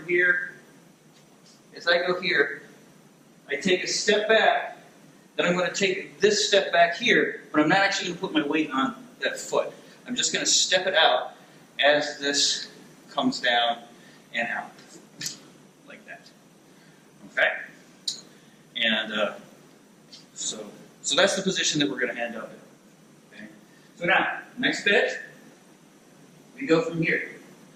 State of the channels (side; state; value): both; identical; correlation 1.00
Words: here, as I go here, I take a step back, then I'm going to take this step back here, but I'm not actually going to put my weight on that foot. I'm just going to step it out as this comes down and out. Okay? And so that's the position that we're going to end up in. Okay? So now, next bit, we go from here.